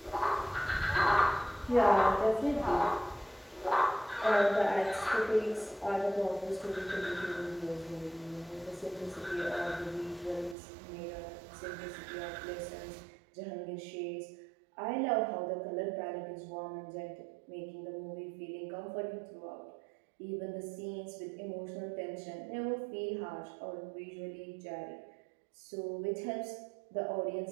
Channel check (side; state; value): left; drops out; at 10.6 s